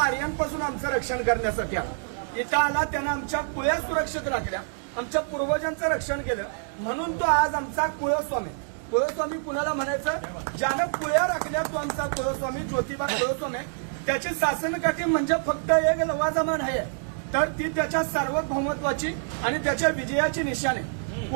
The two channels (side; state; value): left; silent; digital silence